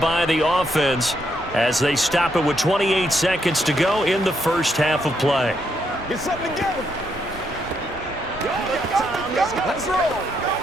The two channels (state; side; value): normal; both; correlation 0.77